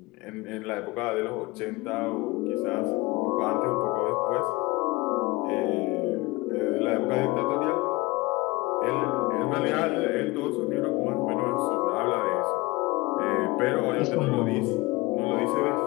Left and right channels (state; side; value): quieter; right; 22.1 dB